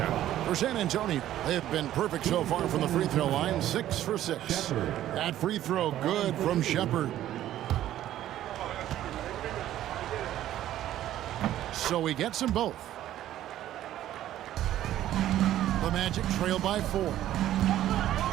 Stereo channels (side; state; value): left; quieter; 12.8 dB